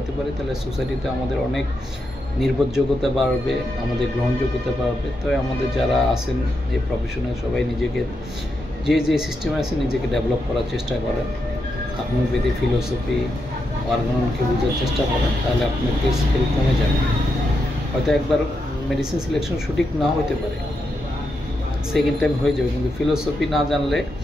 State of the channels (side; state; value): both; normal; correlation 0.84